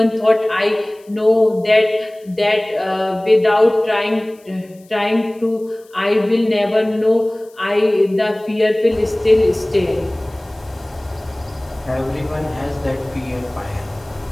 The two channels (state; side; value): noise; left; hiss, 30 dB below the sound